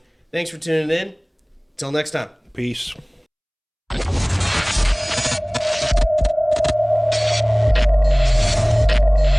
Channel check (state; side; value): identical; both; correlation 1.00